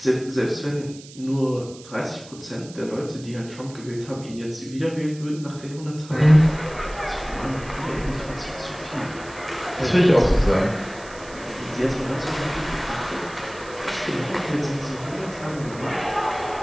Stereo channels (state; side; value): noise; right; hiss, 19 dB below the sound